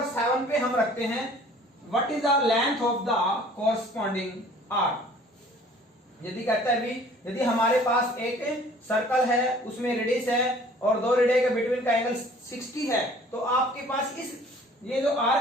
7 पे हम रखते हैं what is the length of the corresponding arc. यदि कहता है भी, यदि हमारे पास एक सर्कल है, उसमें रेडियस है और दो रेडियस के बिटवीन का एंगल 60 है, तो आपके पास इस ये जो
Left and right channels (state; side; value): normal; both; correlation 0.52